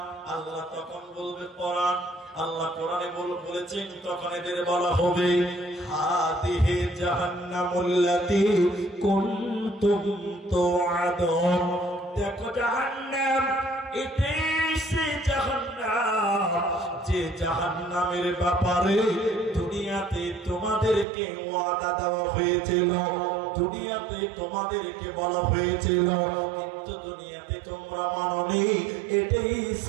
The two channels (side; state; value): left; drops out; at 21.1 s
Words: আল্লাহ তখন বলবে কোরআন, আল্লাহ কোরআনে বলেছেন, তখন এদের বলা হবে হাদিহি জাহান্নামুল্লাতী কুনতুম তুআদুন। দেখো জাহান্নাম, এটাই সে জাহান্নাম যে জাহান্নামের ব্যাপারে দুনিয়াতে তোমাদেরকে ওয়াদা দেওয়া হয়েছিল, দুনিয়াতে তোমাদেরকে বলা হয়েছিল, কিন্তু দুনিয়াতে তোমরা মানোনি। এটাই